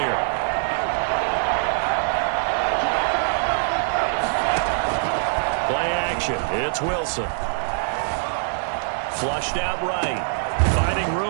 It's Wilson. Flushed out right. Finding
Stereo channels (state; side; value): silent; left; digital silence